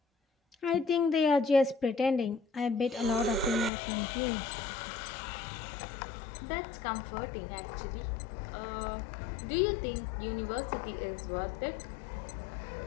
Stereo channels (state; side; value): drops out; right; at 3.7 s